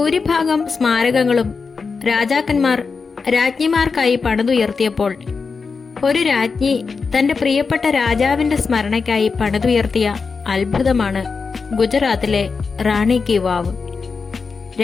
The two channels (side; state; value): right; quieter; 4.9 dB